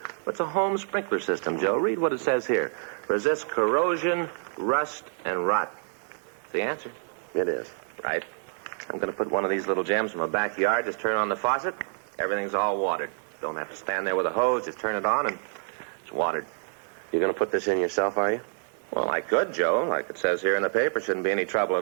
It's a home sprinkler system, Joe. Read what it says here. Resists corrosion, rust, and rot. It's the answer. It is. Right. I'm going to put one of these little gems in my backyard. Just turn on the faucet. Everything's all watered. Don't have to stand there with a hose. Just turn it on and it's watered. You're going to put this in yourself, are you? Well, I could, Joe. Like it says here in the paper, shouldn't be any trouble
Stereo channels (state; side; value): silent; left; digital silence